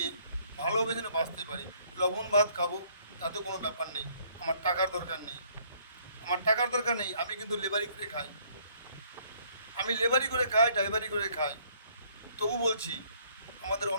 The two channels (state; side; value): inverted; both; correlation -0.64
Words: ভালোভাবে যেন বাঁচতে পারি। লবণ ভাত খাবো, তাতে কোনো ব্যাপার নেই। আমার টাকার দরকার নেই, আমি কিন্তু লেবারি করে খাই, ড্রাইভারি করে খাই। তবু বলছি, আমাদের